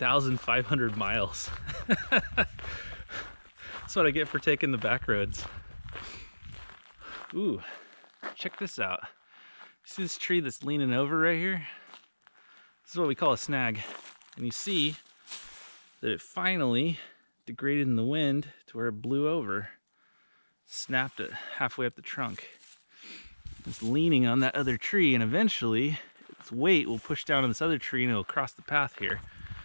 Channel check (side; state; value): both; inverted; correlation -1.00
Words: miles. That's what I get for taking the back roads. Ooh, check this out. See this tree that's leaning over right here? This is what we call a snag. And you see that it finally degraded in the wind to where it blew over, snapped it halfway up the trunk. It's leaning on that other tree, and eventually its weight will push down on this other tree and it'll cross the path here.